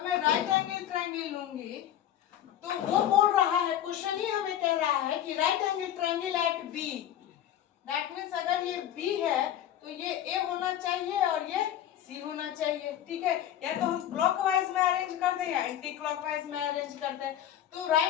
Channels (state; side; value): quieter; right; 11.2 dB